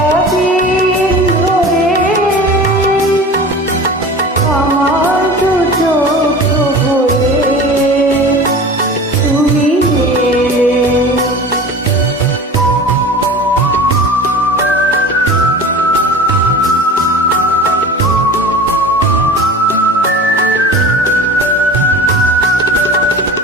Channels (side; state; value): both; normal; correlation 0.37